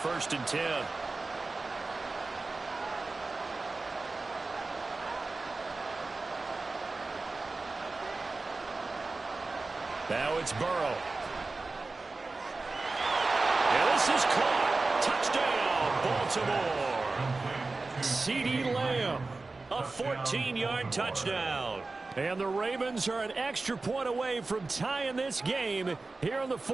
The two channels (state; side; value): quieter; left; 3.5 dB